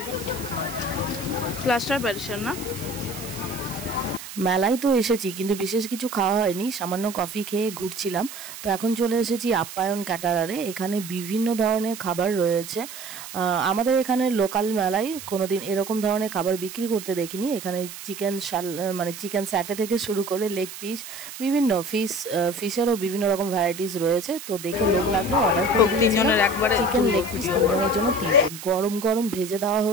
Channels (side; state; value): right; noise; hiss, 12 dB below the sound